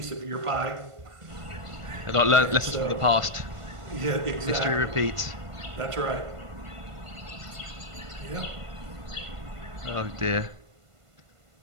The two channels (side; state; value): left; late; 1.5 ms